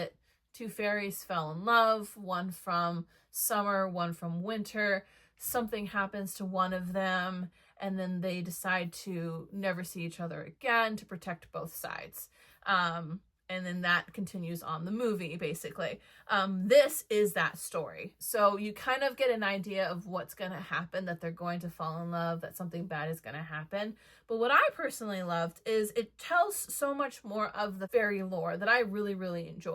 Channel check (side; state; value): both; identical; correlation 1.00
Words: Two fairies fell in love, one from summer, one from winter. Something happens to one of them and then they decide to never see each other again to protect both sides. And then that continues on the movie, basically. This is that story. So you kind of get an idea of what's going to happen, that they're going to fall in love, that something bad is going to happen. But what I personally loved is it tells so much more of the fairy lore that I really, really